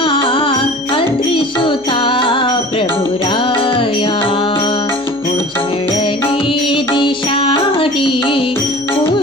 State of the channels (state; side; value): noise; left; hum, 30 dB below the sound